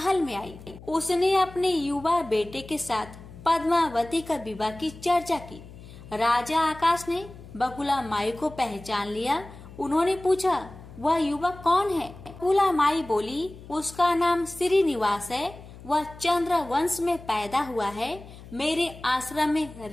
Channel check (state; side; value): noise; left; hum, 17 dB below the sound